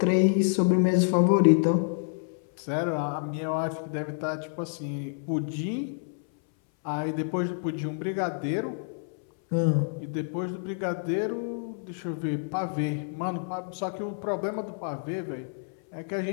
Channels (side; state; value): right; silent; 59 dB below the other